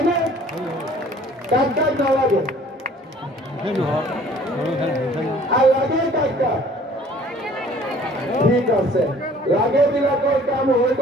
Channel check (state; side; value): normal; both; correlation 0.53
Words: না? কাক কাক নালাগে? আর লাগে কাকা ঠিক আছে লাগে বিলাকৰ কাম হৈ